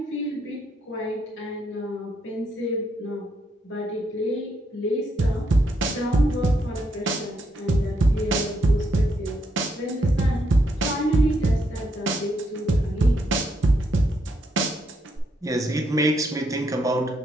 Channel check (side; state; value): both; normal; correlation 0.77